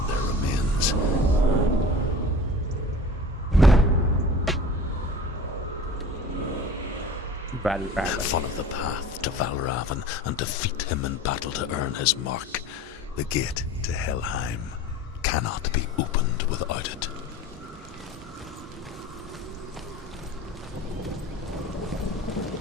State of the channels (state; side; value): normal; both; correlation 0.39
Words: their remains. Follow the path to Valravn and defeat him in battle to earn his mark. The gate to Helheim cannot be opened without it.